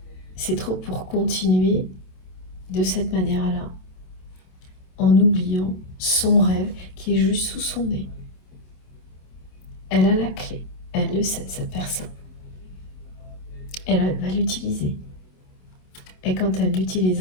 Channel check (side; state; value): right; late; 27 ms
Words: C'est trop pour continuer de cette manière-là, en oubliant son rêve qui est juste sous son nez. Elle a la clé, elle le sait, cette personne. Elle va l'utiliser. Et quand elle